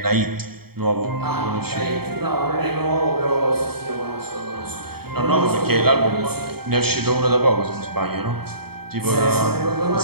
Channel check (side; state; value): left; late; 0.95 ms